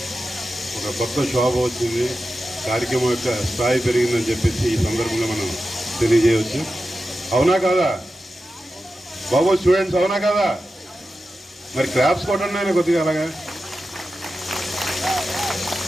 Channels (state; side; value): normal; both; correlation 0.92